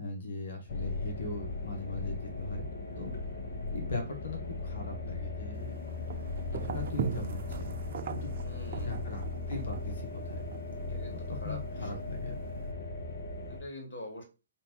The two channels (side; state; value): both; inverted; correlation -0.38